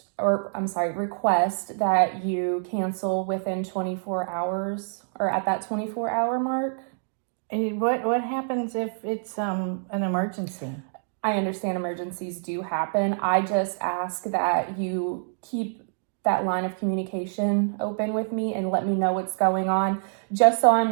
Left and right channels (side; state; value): left; silent; digital silence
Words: request that you cancel within 24 hours or at that 24-hour mark. What happens if it's an emergency? I understand emergencies do happen. I just ask that you keep that line of communication open with me and let me know what's going on, just so I'm